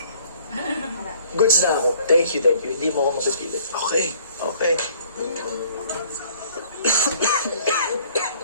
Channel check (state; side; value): inverted; both; correlation -0.57